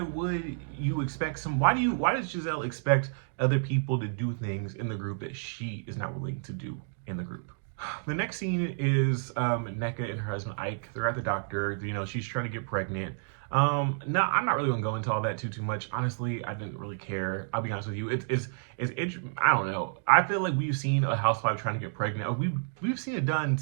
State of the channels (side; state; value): left; silent; digital silence